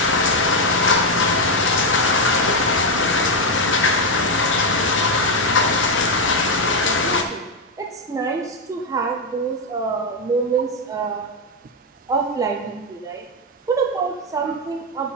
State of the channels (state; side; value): normal; both; correlation 0.04